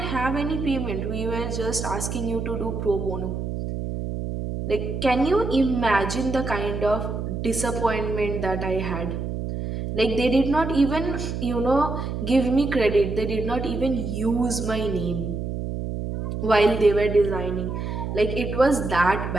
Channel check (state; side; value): noise; right; hum, 4 dB below the sound